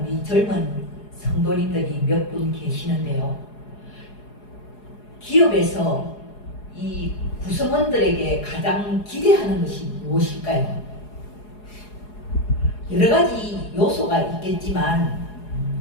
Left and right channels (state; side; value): late; right; 4.8 ms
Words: 젊은 성도님들이 몇 분 계시는데요. 기업에서 이 구성원들에게 가장 기대하는 것이 무엇일까요? 여러 가지 요소가 있겠지만